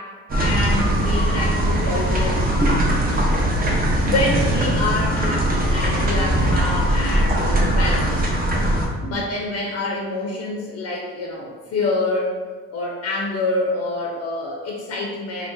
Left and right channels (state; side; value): normal; both; correlation 0.49